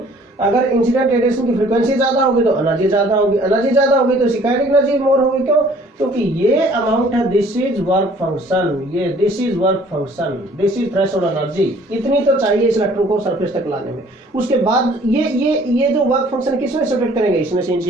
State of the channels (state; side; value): normal; both; correlation 0.55